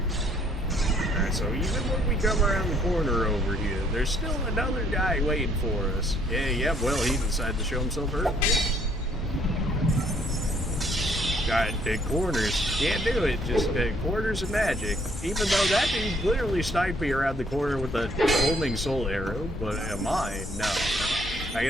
Alright, so even when we come around the corner over here, there's still another guy waiting for us. Yeah, well, he decided to show himself early. Got big corners. Can't do it. Just corners and magic. Even though that dude literally sniped me around the corner with a homing soul arrow, but mine, no. I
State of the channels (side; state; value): both; normal; correlation 0.65